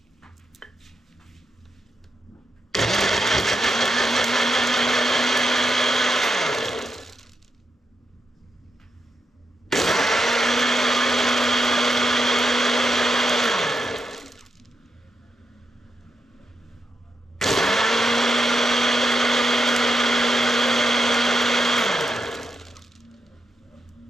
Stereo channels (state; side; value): normal; both; correlation 0.85